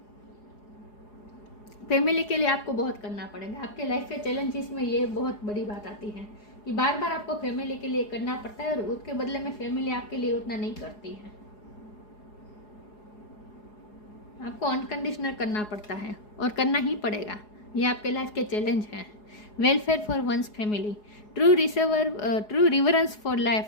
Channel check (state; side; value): late; right; 4.8 ms